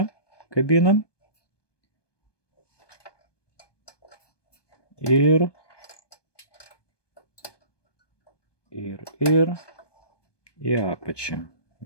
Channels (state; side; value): late; right; 1.2 ms